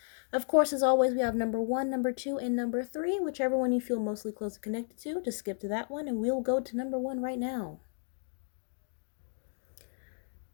Of course, as always, we have number 1, number 2, and number 3. Whichever one you feel mostly closely connected to, just skip to that one, and we'll go to number 1 right now.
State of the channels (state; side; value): silent; right; 56 dB below the other